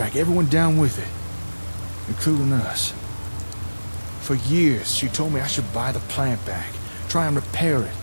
everyone down with it. Including us. For years, she told me I should buy the plant back, try and repair it,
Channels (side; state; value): both; inverted; correlation -1.00